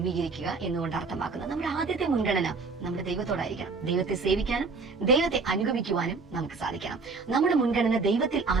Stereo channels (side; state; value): left; quieter; 4.3 dB